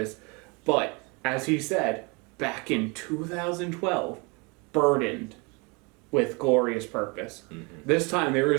But, as he said, back in 2012, burdened with glorious purpose. This time there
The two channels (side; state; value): left; quieter; 29.7 dB